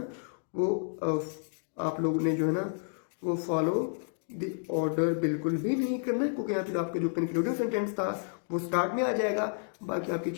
वो आप लोगों ने जो है ना वो फॉलो द ऑर्डर बिल्कुल भी नहीं करना है, क्योंकि यहाँ पे आपका जो कंक्लूडिंग सेंटेंस था वो स्टार्ट में आ जाएगा, बाकी आपकी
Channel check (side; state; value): right; silent; digital silence